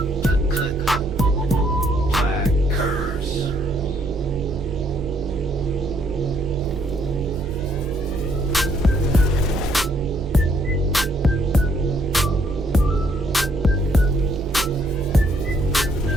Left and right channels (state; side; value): normal; both; correlation 0.68